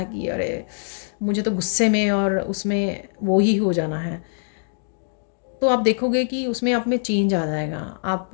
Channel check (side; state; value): right; silent; digital silence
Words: कि अरे मुझे तो गुस्से में और उसमें वो ही हो जाना है, तो आप देखोगे कि उसमें आप में चेंज आ जाएगा। आप